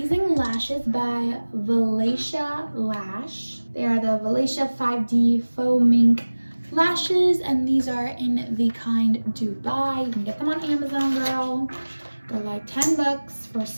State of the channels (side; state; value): both; inverted; correlation -1.00